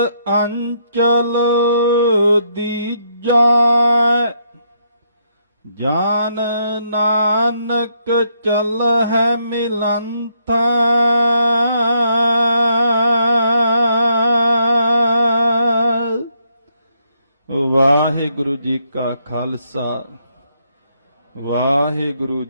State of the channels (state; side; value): inverted; both; correlation -0.74